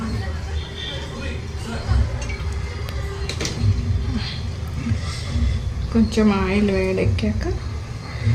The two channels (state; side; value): identical; both; correlation 1.00